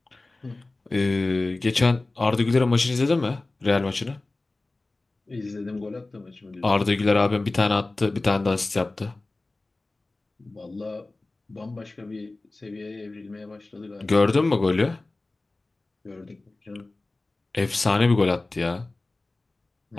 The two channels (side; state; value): right; quieter; 3.1 dB